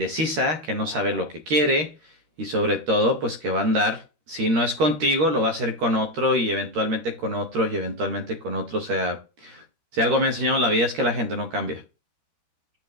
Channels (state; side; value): late; left; 13 ms